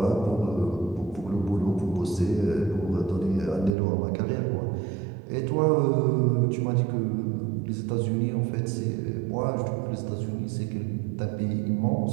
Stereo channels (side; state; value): left; drops out; at 3.7 s